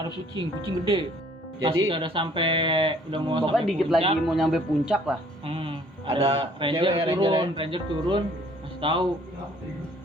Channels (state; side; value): normal; both; correlation 0.58